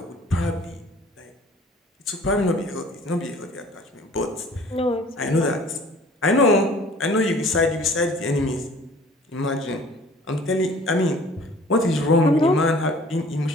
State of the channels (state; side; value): normal; both; correlation 0.50